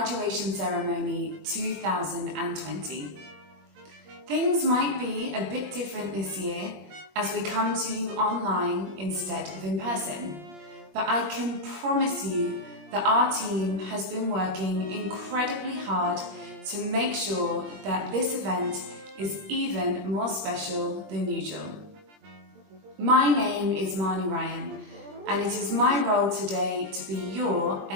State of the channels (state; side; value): late; left; 20 ms